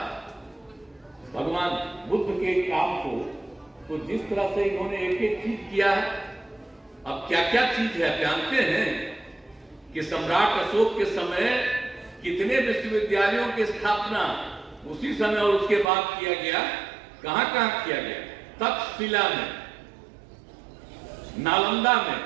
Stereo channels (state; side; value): drops out; left; at 15.9 s